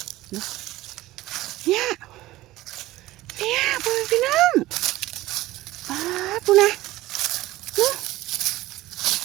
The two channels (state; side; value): quieter; left; 17.0 dB